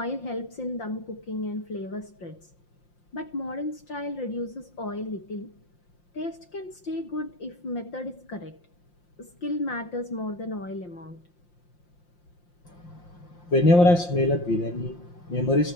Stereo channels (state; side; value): late; right; 5.7 ms